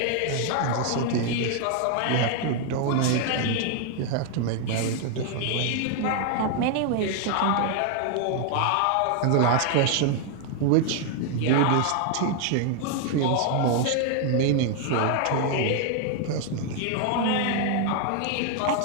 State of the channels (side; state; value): both; different; correlation 0.00